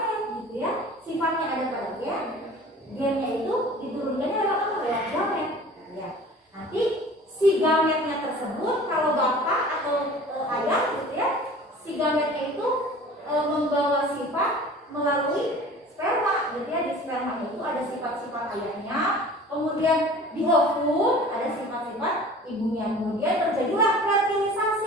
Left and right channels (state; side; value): normal; both; correlation 0.43